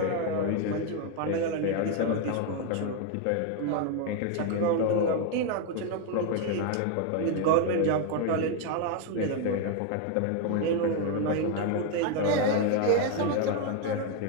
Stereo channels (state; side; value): different; both; correlation 0.01